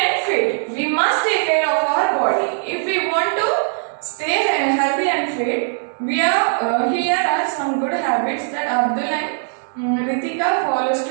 and fit. We must take care of our body. If we want to stay healthy and fit, here are some good habits that Abdul and Ritika follows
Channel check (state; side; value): silent; left; 66 dB below the other